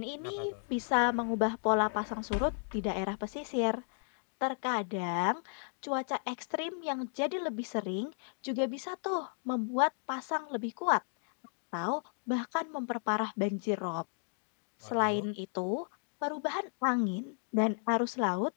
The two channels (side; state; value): right; silent; 55 dB below the other